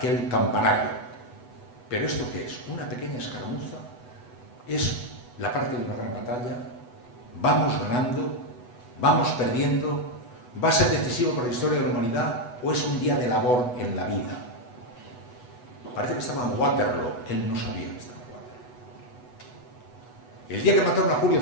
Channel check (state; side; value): late; right; 8.1 ms